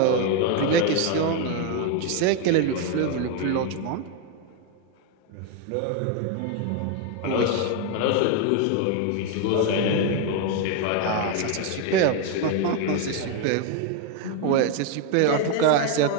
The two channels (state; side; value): different; both; correlation 0.01